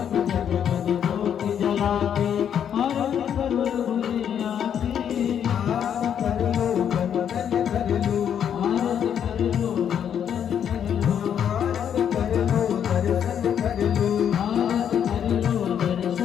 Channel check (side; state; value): right; quieter; 8.8 dB